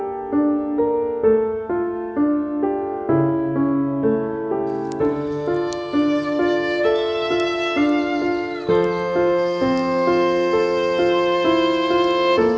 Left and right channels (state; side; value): identical; both; correlation 1.00